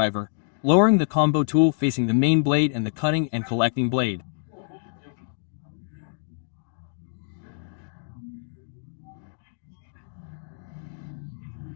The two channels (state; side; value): silent; right; digital silence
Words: lowering the combo tool facing the main blade and the cutting and collecting blade.